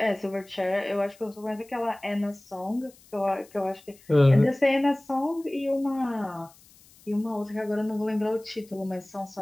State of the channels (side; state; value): left; noise; hiss, 26 dB below the sound